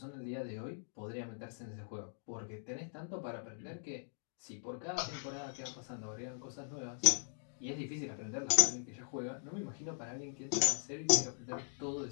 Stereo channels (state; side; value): silent; right; digital silence